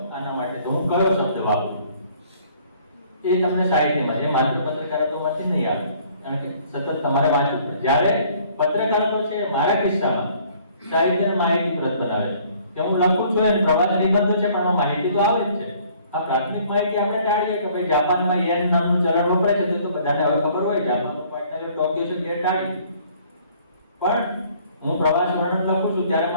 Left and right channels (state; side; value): inverted; both; correlation -0.58